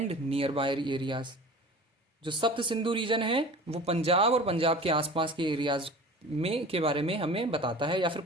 nearby areas. जो सप्त सिंधु रीजन है वो पंजाब और पंजाब के आसपास के एरियाज में के बारे में हमें बताता है, या फिर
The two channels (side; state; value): both; normal; correlation 0.39